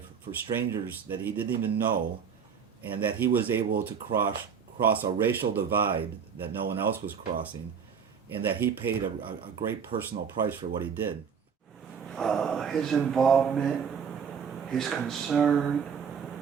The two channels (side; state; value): left; quieter; 6.8 dB